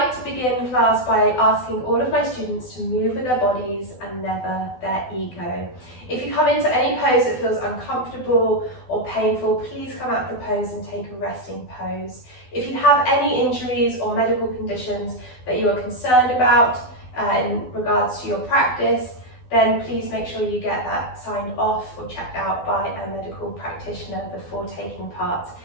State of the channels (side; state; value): right; late; 12 ms